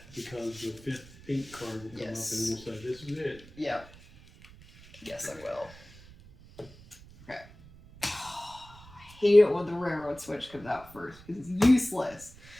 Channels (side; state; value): right; noise; rumble, 21 dB below the sound